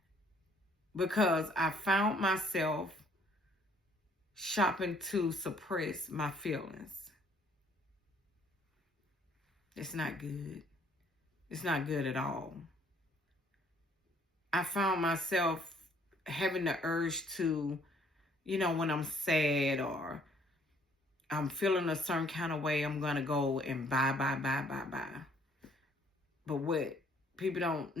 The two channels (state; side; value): normal; both; correlation 0.62